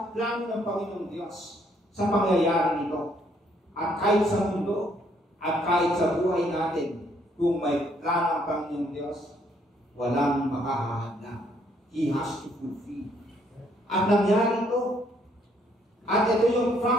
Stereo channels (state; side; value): normal; both; correlation 0.68